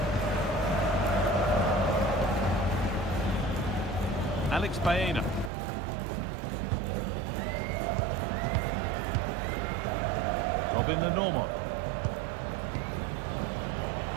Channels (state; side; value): drops out; left; at 5.5 s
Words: Alex Baena. Robin the normal.